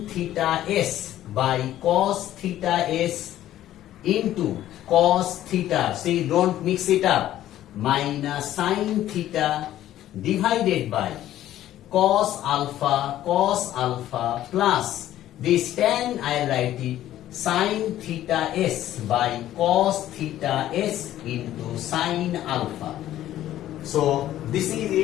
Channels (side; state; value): right; quieter; 13.0 dB